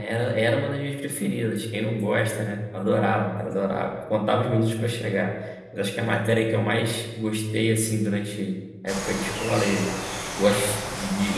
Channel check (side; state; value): both; identical; correlation 1.00